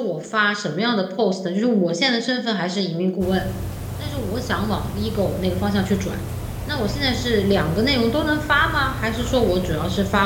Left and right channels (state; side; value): identical; both; correlation 1.00